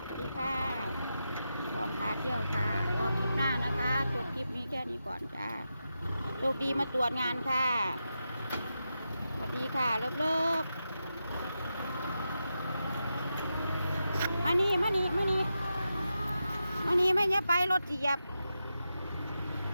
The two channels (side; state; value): both; inverted; correlation -0.89